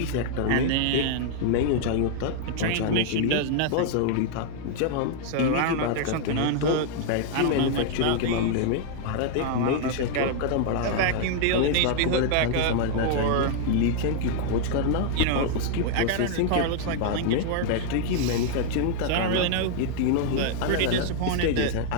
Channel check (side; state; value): both; different; correlation 0.00